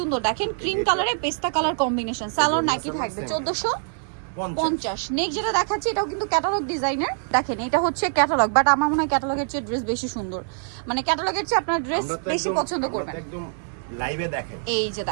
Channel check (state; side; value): silent; left; 62 dB below the other